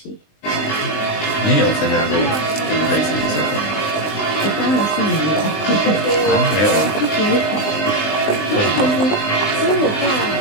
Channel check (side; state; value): right; late; 20 ms